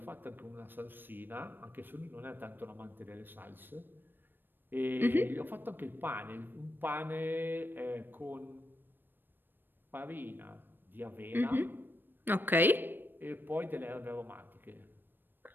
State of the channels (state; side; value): late; left; 0.095 ms